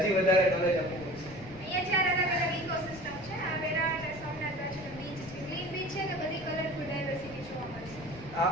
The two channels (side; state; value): left; noise; rumble, 17 dB below the sound